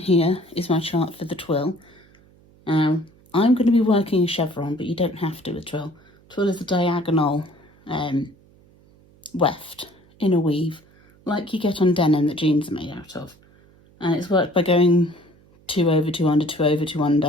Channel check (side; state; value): right; noise; hum, 29 dB below the sound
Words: is my chart for the twill. I'm going to be working a chevron, but you don't have to with twill. Twill is a diagonal weft in a weave, like you get on denim that jeans are made out of. And it's worked by going 2 over, 2 under, 2 over, 2